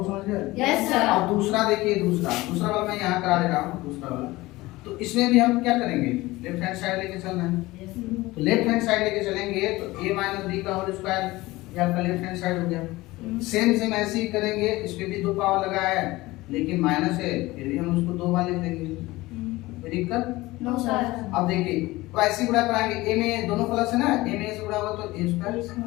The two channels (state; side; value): quieter; right; 19.6 dB